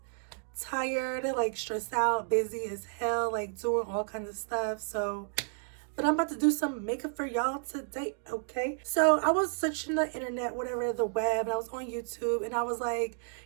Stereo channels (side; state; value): left; silent; digital silence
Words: tired, like stressed out, busy as hell, like doing all kinds of stuff. So, but I'm about to do some makeup for y'all today, okay? So I was searching the internet, whatever, the web, and I was on YouTube, and I was like,